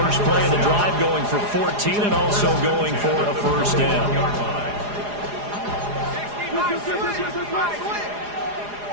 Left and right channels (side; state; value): left; late; 4.9 ms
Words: play of the drive going for 14 and also going for a first down.